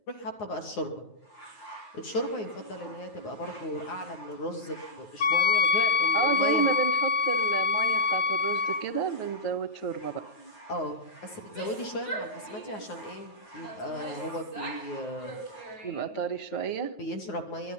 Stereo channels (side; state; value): right; late; 9.3 ms